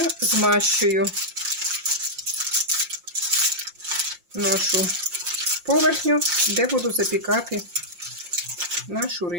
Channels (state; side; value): late; left; 5.7 ms